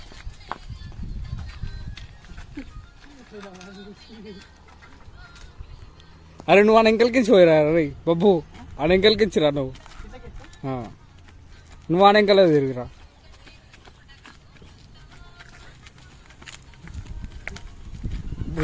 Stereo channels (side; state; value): both; identical; correlation 1.00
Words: అరే నువ్వు ఆ ఎంకల్కించి పోయిరా రే బబ్బు, ఆ ఎంకల్కించిరా నువ్వు. నువ్వు ఆ ఎంకలే తిరిగిరా.